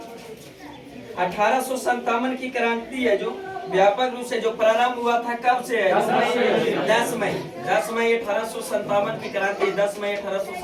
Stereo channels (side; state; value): both; identical; correlation 1.00